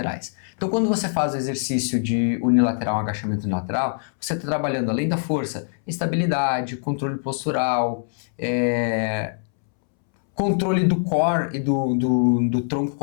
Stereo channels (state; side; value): silent; right; 63 dB below the other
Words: Então quando você faz o exercício de unilateral, um agachamento unilateral, você está trabalhando além da força, estabilidade, controle postural, controle do core e do tronco